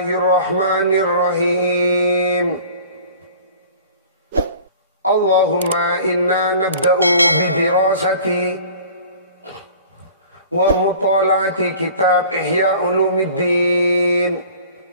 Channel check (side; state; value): both; inverted; correlation -0.45